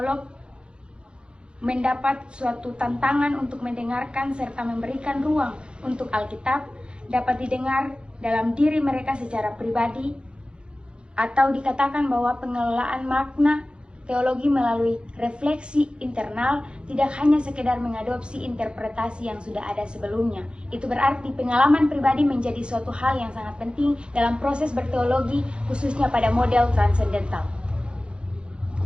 mendapat suatu tantangan untuk mendengarkan serta memberikan ruang untuk Alkitab dapat didengar dalam diri mereka secara pribadi, atau dikatakan bahwa pengelolaan makna teologi melalui refleksi internal tidak hanya sekedar mengadopsi interpretasi yang sudah ada sebelumnya. Itu berarti pengalaman pribadi menjadi suatu hal yang sangat penting dalam proses berteologi, khususnya pada model transendental.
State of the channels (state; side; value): late; left; 0.056 ms